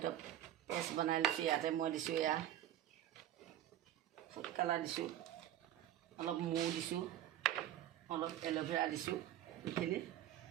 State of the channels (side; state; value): left; quieter; 12.3 dB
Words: পেষ্ট বনাই লৈছোঁ। ইয়াতে মই দিছোঁ এয়া ফুড কালাৰ দিছোঁ, অলপ মৌ দিছোঁ, অলপ এল'ভেৰা দিছোঁ। এইখিনি